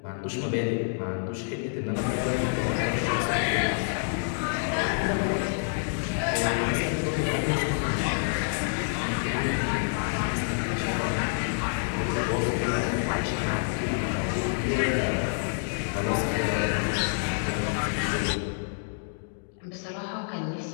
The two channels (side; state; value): right; silent; digital silence